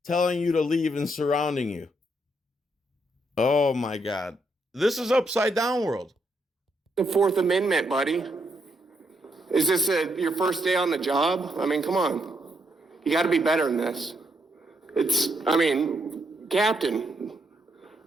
telling you to leave and surrounding you. Oh my God. This is upside down world. The Fourth Amendment, buddy. Is this your first day on the job? I mean, come on. You got to be better than this. Captain,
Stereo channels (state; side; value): normal; both; correlation 0.77